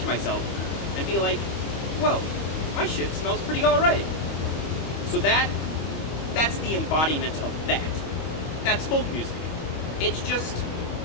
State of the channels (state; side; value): late; right; 25 ms